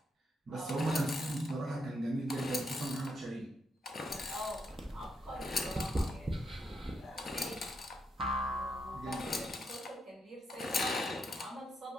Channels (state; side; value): normal; both; correlation 0.79